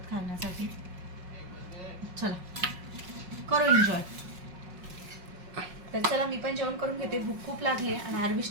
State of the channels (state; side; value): late; left; 5.5 ms